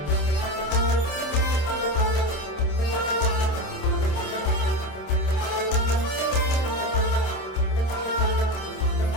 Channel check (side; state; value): right; late; 27 ms